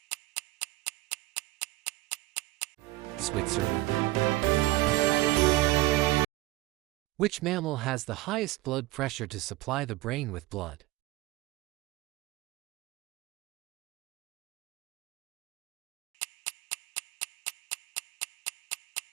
Switzerland. Which mammal has the highest blood pressure to supply the brain with blood?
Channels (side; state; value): left; quieter; 18.7 dB